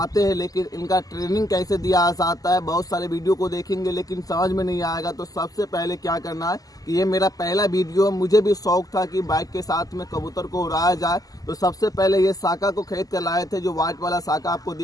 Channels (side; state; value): right; late; 0.17 ms